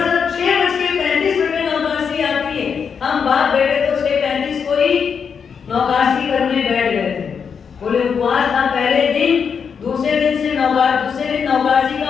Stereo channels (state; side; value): quieter; right; 6.5 dB